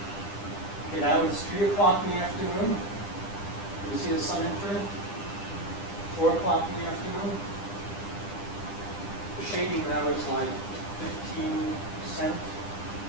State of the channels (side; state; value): right; late; 10 ms